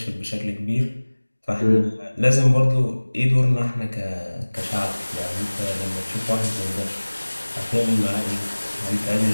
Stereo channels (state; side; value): inverted; both; correlation -1.00